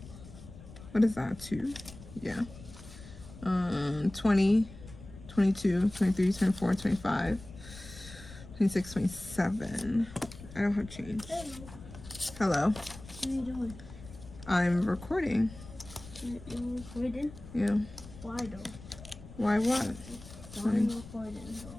What is that? 2? Yeah. 20, 22, 23, 24, 25, 26, 27. I don't have change. Hello. What are you doing? I'm recording. You're recording? Yeah. Why though? Why what? Why are you recording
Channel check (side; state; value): left; noise; rumble, 16 dB below the sound